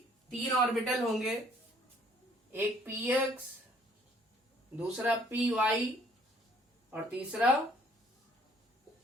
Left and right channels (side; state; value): both; normal; correlation 0.61